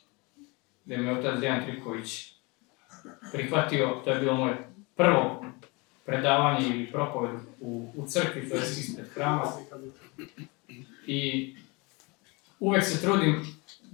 gdje me otac Dejan Tripković prihvatio, to je bilo moje prvo predavanje ili propoved u crkvi, to je ispred hrama. I uvek se trudim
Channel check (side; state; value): right; quieter; 27.5 dB